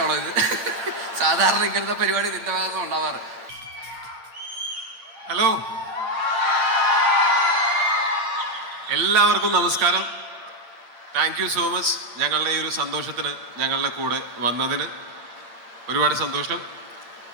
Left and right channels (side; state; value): left; late; 8.8 ms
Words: ഇത്? സാധാരണ ഇങ്ങനത്തെ പരിപാടി നിന്റെ ഭാഗത്ത് ഉണ്ടാവാറ്. ഹലോ, എല്ലാവർക്കും നമസ്കാരം. താങ്ക് യു സോ മച്ച് ഞങ്ങളുടെ ഈ ഒരു സന്തോഷത്തിന് ഞങ്ങളുടെ കൂടെ വന്നതിന് ഒരുപാട് സന്തോഷം.